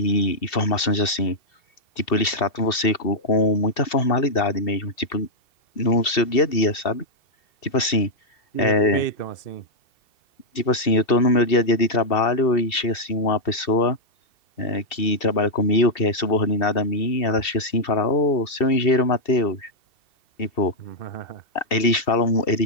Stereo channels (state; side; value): late; right; 2.7 ms